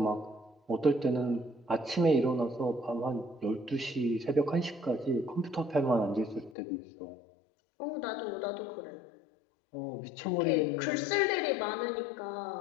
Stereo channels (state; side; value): drops out; right; at 6.6 s